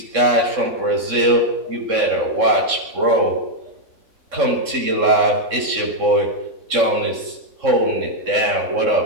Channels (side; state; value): left; late; 3.6 ms